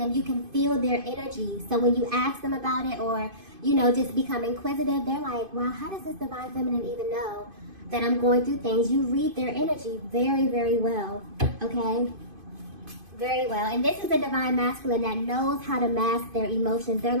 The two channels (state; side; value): late; left; 2.5 ms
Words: you can feel their energy. So when you ask them about it or, just become inquisitive, they're like, wow, how does this Divine Feminine even know that I'm going through things? You read their energy very, very well, okay? Very well. And this is a Divine Masculine that knows how to mask their emotions. They're